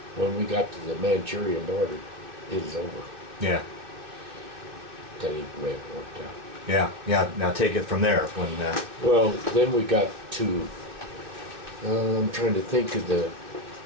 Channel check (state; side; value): late; left; 2.6 ms